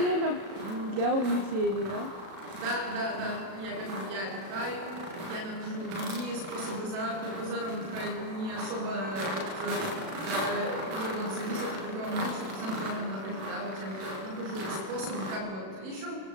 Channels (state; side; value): late; left; 37 ms